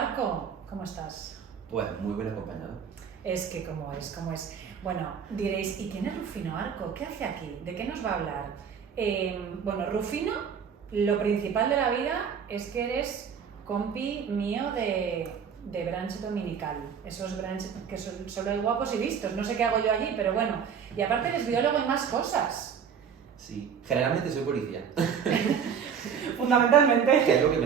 ¿Cómo estás? Pues muy bien acompañado. Es que cómo es. Bueno, diréis, ¿y quién es Rufino Arco? ¿Qué hace aquí? ¿De qué nos va a hablar? Bueno, Rufino, lo principal de la vida es que eres compi mío de brunch dominical. Esos brunch que solo hay guapos y vistos. No sé qué hago yo allí, pero bueno. Y aparte eres biólogo y más cosas. Sí, generalmente soy policía. Fundamentalmente. Que es lo que me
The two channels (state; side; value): quieter; left; 7.2 dB